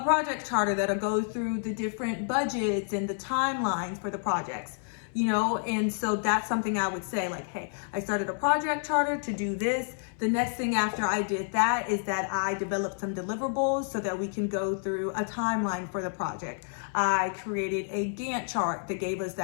project charter that'll go through the different budgets and the timelines for the projects. You know, and so that's something I would say like, hey, I started a project charter to do this. The next thing after I did that is that I developed some deliverables so that we can go through a timeline for the project. I created a Gantt chart that gave us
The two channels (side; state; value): right; silent; 58 dB below the other